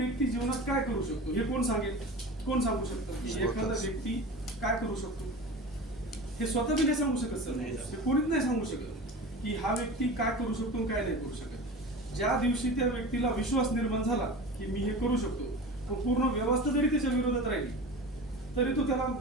जीवनात काय करू शकतो हे कोण सांगेल? कोण सांगू शकतो की एखादा व्यक्ती काय करू शकतो? हे स्वतः बी नाही सांगू शकत सर. हे कोणीच नाही सांगू शकत की हा व्यक्ती काय करू शकतो आणि काय नाही करू शकत. ज्या दिवशी त्या व्यक्तीला विश्वास निर्माण झाला की मी हे करू शकतो, तो पूर्ण व्यवस्था जरी त्याच्या विरोधात राहिली तरी तो त्याला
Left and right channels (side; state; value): both; normal; correlation 0.33